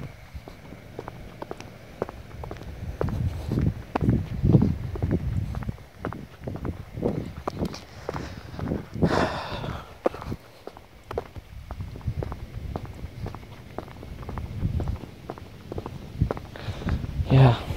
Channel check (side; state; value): both; identical; correlation 1.00